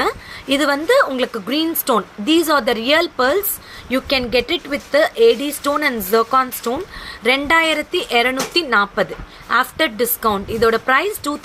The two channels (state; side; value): identical; both; correlation 1.00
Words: இது வந்து உங்களுக்கு green stone. These are the real pearls. You can get it with the AD stone and zircon stone. 2240 after discount. இதோட price